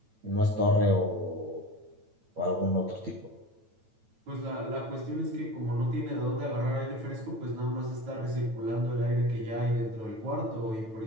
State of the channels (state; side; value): late; left; 9.1 ms